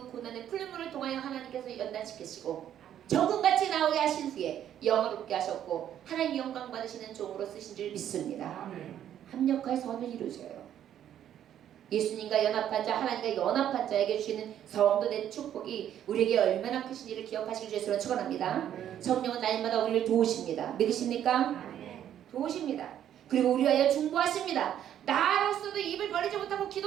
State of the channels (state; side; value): quieter; left; 10.5 dB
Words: 고난의 풀물을 통하여 하나님께서 연단시키시고 정금같이 나오게 하신 후에 영화롭게 하셨고 하나님 영광 받으시는 종으로 쓰신 줄 믿습니다. 합력할 선을 이루셔요. 예수님과 연합한 자 하나님과 연합한 자에게 주시는 성도된 축복이 우리에게 얼마나 크신지를 기억하시길 주시면 축원합니다. 성령은 날마다 우리를 도우십니다. 믿으십니까? 도우십니다. 그리고 우리 위하여 중보하십니다. 나로서도 입을 벌리지 못하고